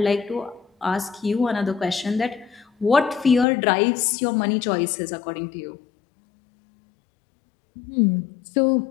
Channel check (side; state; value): right; drops out; at 3.5 s